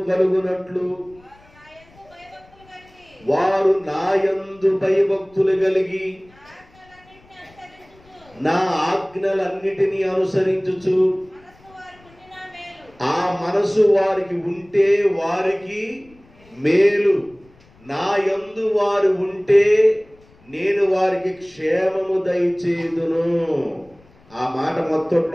కలుగునట్లు వారు నాయందు భయభక్తులు కలిగి నా ఆజ్ఞలన్నిటినీ అనుసరించుచు ఆ మనసు వారికి ఉంటే వారికి మేలు. నా యందు వారు ఉంటే నేను వారికి క్షేమము దయచేయుదును. ఆ మాట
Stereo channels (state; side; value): noise; left; rumble, 28 dB below the sound